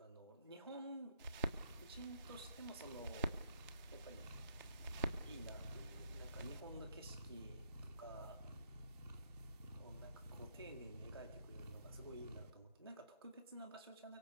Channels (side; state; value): both; inverted; correlation -0.69